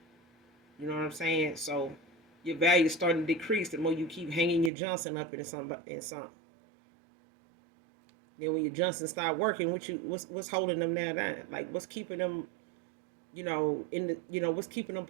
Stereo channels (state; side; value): drops out; left; at 4.7 s